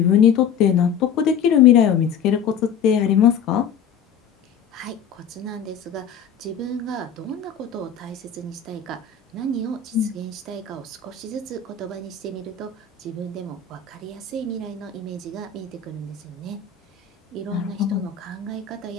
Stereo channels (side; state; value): right; quieter; 7.2 dB